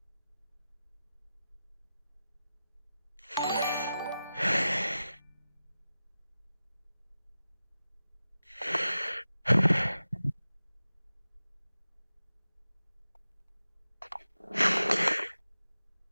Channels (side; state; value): both; inverted; correlation -0.93